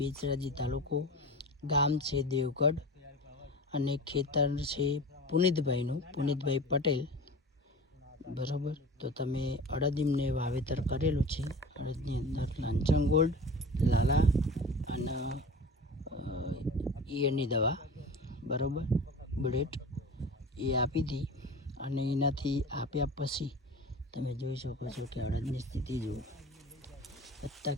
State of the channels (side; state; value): both; normal; correlation 0.36